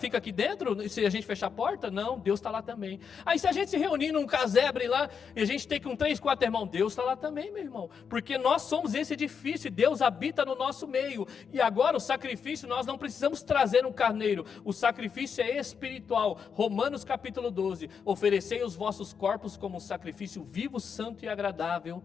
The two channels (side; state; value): right; quieter; 6.6 dB